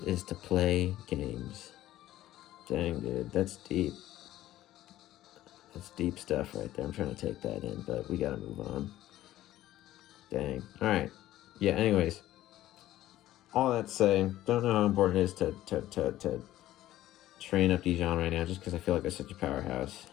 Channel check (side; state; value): right; quieter; 14.4 dB